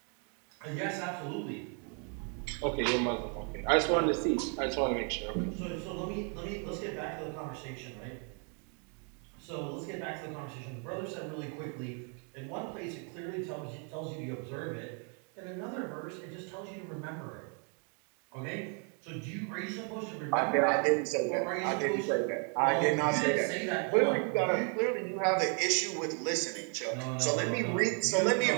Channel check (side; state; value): left; quieter; 39.6 dB